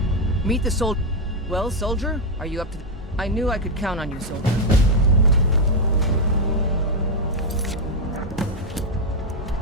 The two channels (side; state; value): both; normal; correlation 0.03